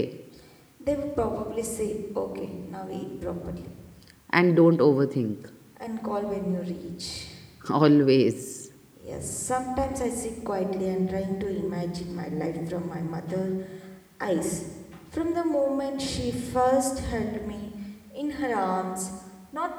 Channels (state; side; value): identical; both; correlation 1.00